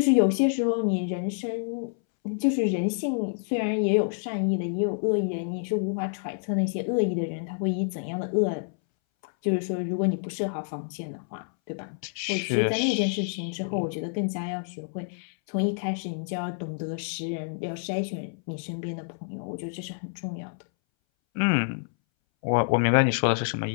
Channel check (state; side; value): silent; right; 60 dB below the other